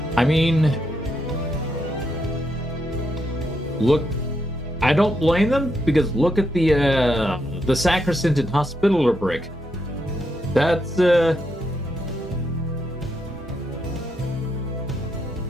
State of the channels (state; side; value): normal; both; correlation 0.80